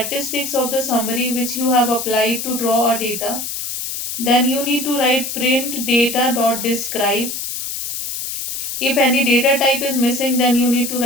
of the summary which you have applied to draw a data, then you need to write print data.describe. If any data type is missing, then you need to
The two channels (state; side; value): noise; left; hiss, 5 dB below the sound